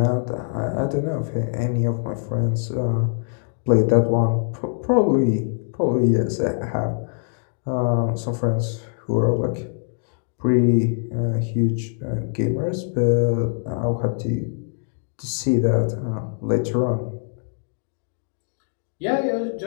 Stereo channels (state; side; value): silent; right; digital silence